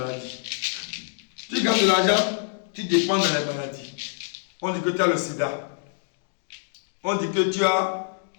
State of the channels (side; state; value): right; silent; digital silence